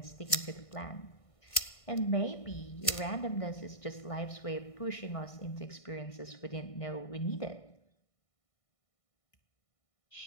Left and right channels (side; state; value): right; late; 1.6 ms